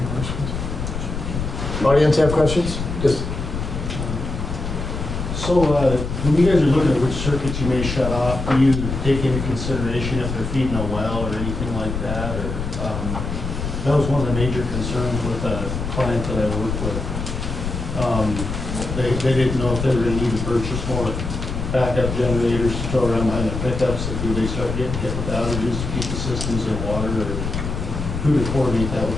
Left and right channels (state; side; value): noise; left; rumble, 4 dB below the sound